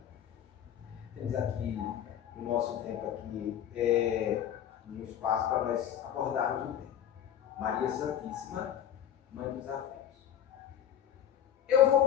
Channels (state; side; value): quieter; right; 10.0 dB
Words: Temos aqui o nosso tempo aqui, um espaço para nós abordarmos o tema. Maria Santíssima, Mãe dos Afetos. Eu vou